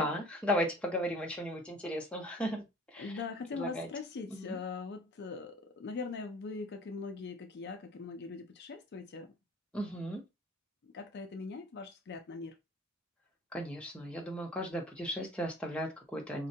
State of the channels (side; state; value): both; normal; correlation 0.47